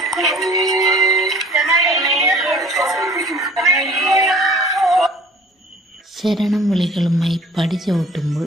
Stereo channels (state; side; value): normal; both; correlation 0.49